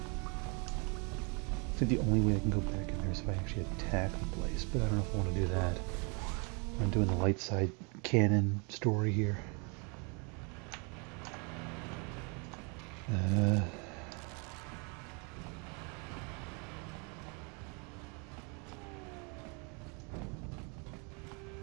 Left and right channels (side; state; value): left; quieter; 33.8 dB